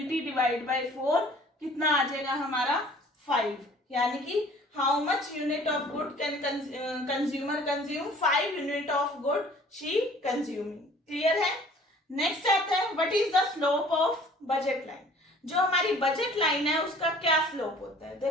divide by 4 कितना आ जाएगा हमारा 5। यानी कि how much unit of good can consumer consume, 5 unit of good she consuming. Clear है। नेक्स्ट आता है, what is the slope of budget line. जो हमारी बजट लाइन है उसका क्या स्लोप होता है।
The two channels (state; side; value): normal; both; correlation 0.51